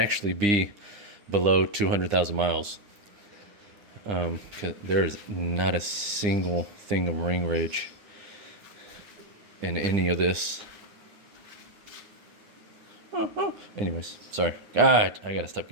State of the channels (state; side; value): late; left; 9.8 ms